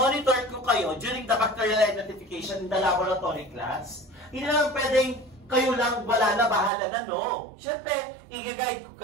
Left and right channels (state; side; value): drops out; left; at 6.7 s